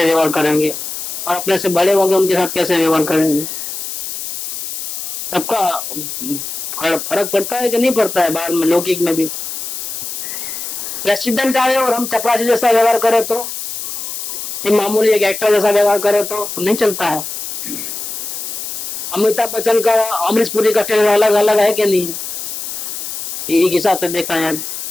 व्यवहार करेंगे, और अपने से बड़े होंगे उनके साथ कैसे व्यवहार करेंगे? सबका फर्क पड़ता है कि नहीं पड़ता है? बाहर में लौकिक में भी प्रेसिडेंट आए और हम चपरासी जैसा व्यवहार करें तो, ये मामूली एक एक्टर जैसा व्यवहार करें तो नहीं चलता है। अमिताभ बच्चन का अमरीश पुरी का टेलर अलग अलग है कि नहीं? एक हिसाब से देखा है।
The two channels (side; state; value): left; noise; hiss, 6 dB below the sound